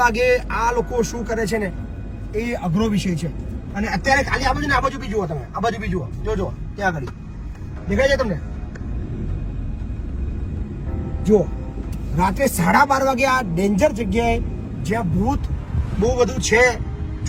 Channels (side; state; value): both; identical; correlation 1.00